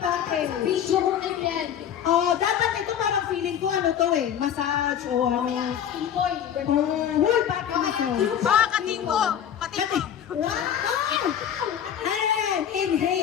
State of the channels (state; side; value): quieter; right; 9.3 dB